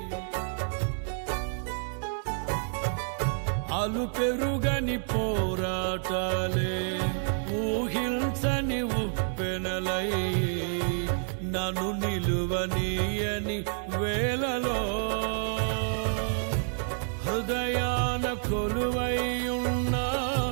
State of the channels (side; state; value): left; silent; digital silence